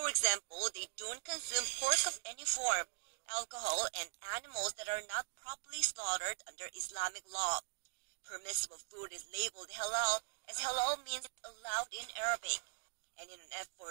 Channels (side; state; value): left; silent; digital silence